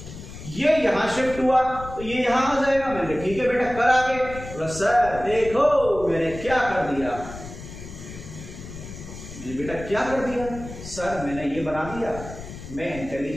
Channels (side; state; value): left; noise; rumble, 12 dB below the sound